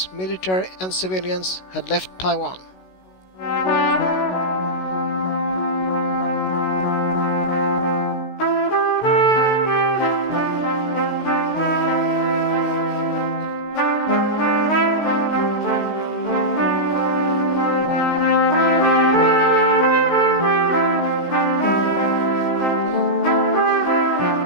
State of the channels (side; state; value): right; late; 16 ms